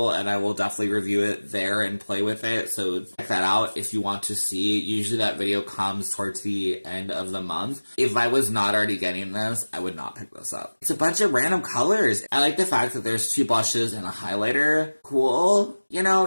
and I will definitely review it there and play with it, so check that out if you want to see. Usually that video comes towards the end of the month. If I was not already getting this, I would not pick this up. It's a bunch of random colors. I like the fact that there's 2 blushes and a highlighter. Cool. You know,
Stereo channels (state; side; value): inverted; both; correlation -1.00